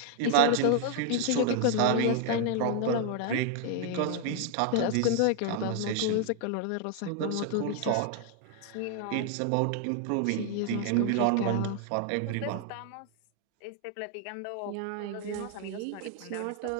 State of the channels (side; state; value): both; different; correlation 0.00